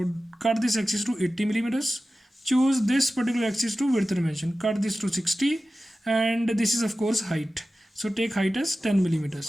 cut this axis to 80 millimeters. Choose this particular axis to width dimension. Cut this to 60, and this is of course height. So take height as 10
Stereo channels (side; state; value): both; normal; correlation 0.95